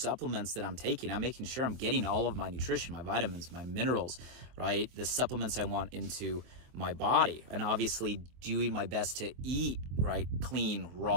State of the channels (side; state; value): left; late; 23 ms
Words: supplements that I'm taking. I'm making sure I'm getting all of my nutrition, my vitamins, my minerals, right? The supplements I want into my body. And obviously doing my best to eat, right? Clean,